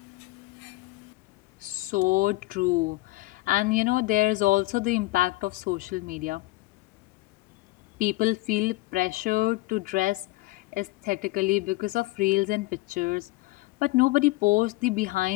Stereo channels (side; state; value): right; quieter; 20.9 dB